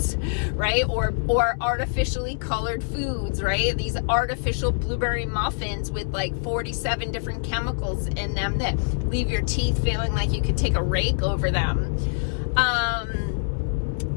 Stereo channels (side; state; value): right; silent; 60 dB below the other